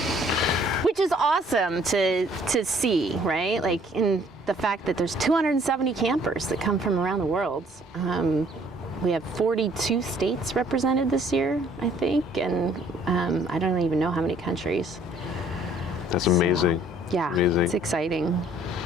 which is awesome to see, right? In the fact that there's 270 campers that come from around the world. We have 42 states represented this year, I think, and I don't even know how many countries. That's amazing. So, yeah, amazing. It's exciting.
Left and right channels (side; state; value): both; normal; correlation 0.60